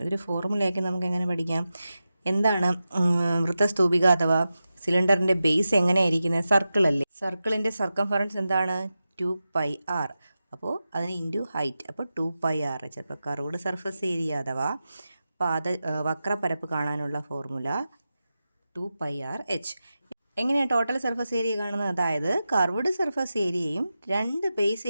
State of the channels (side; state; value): both; inverted; correlation -0.92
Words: ഇതൊരു ഫോർമുലയൊക്കെ നമുക്ക് എങ്ങനെ പഠിക്കാം? എന്താണ് വൃത്തസ്തൂപിക അഥവാ സിലിണ്ടറിൻ്റെ ബേസ് എങ്ങനെയായിരിക്കുന്നത്? സർക്കിൾ അല്ലേ? സർക്കിളിൻ്റെ സർക്കംഫറൻസ് എന്താണ്? 2πr. അപ്പോൾ അതിന് ഇൻറ്റു ഹൈറ്റ്, അപ്പോൾ 2πr. ചിലപ്പോൾ കർവ്ഡ് സർഫസ് ഏരിയ അഥവാ വക്രപരപ്പ് കാണാനുള്ള ഫോർമുല 2πrh. എങ്ങനെയാണ് ടോട്ടൽ സർഫസ് ഏരിയ കാണുന്നത്? അതായത് കർവ്ഡ് സർഫസ് ഏരിയയും രണ്ട് ബേസ്